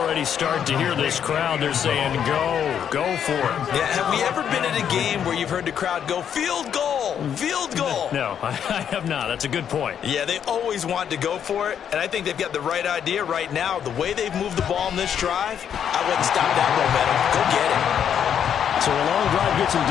start to hear this crowd. They're saying, go for it. Yeah, have we ever been at a game where you've heard the crowd go, field goal, field goal? No, I have not. That's a good point. Yeah, they always want to go for it, and I think they've got the right idea right now. The way they've moved the ball in this drive, I wouldn't stop that momentum. Go get it. So a long drive gets them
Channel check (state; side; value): quieter; right; 8.6 dB